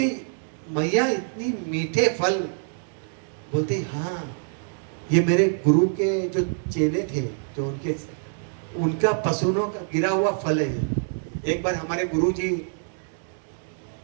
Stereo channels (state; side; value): silent; left; 61 dB below the other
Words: मैया इतनी मीठे फल। बोलती हाँ ये मेरे गुरु के जो चेले थे जो उनका पसीनों का गिरा हुआ फल है। एक बार हमारे गुरु जी